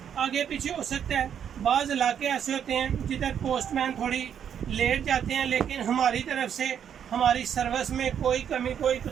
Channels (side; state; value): left; quieter; 8.6 dB